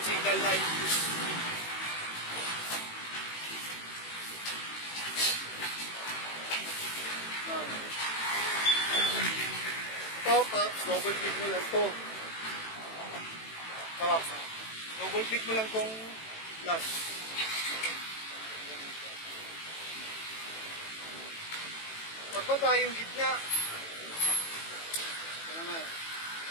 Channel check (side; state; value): right; late; 18 ms